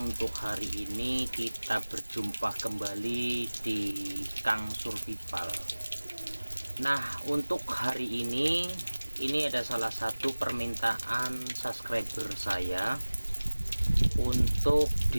Untuk hari ini kita berjumpa kembali di Kang Survival. Nah, untuk hari ini ada salah satu permintaan subscriber saya untuk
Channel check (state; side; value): inverted; both; correlation -1.00